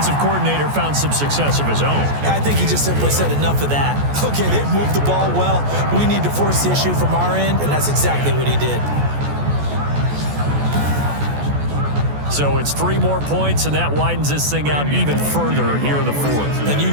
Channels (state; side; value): late; left; 14 ms